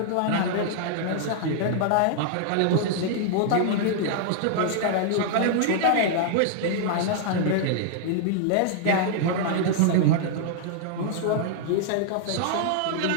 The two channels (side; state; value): both; different; correlation -0.01